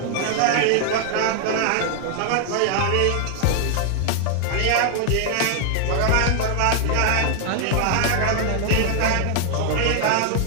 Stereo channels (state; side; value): different; both; correlation 0.00